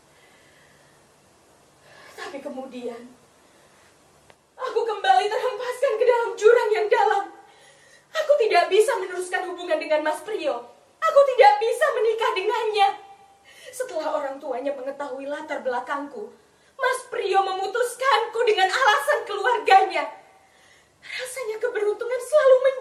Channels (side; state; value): both; identical; correlation 1.00